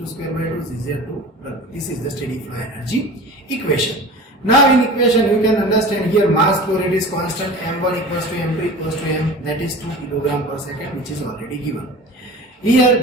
square by 2 ZZ2. This is the steady flow energy equation. Now in equation you can understand here mass flow rate is constant, M1 equals to M2 equals to M, that is 2 kg per second, which is already given. Here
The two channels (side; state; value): both; normal; correlation 0.37